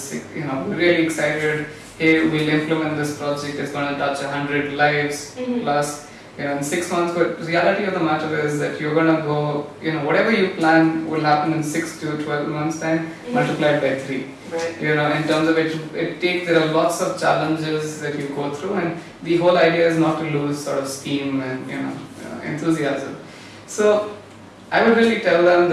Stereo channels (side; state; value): both; identical; correlation 1.00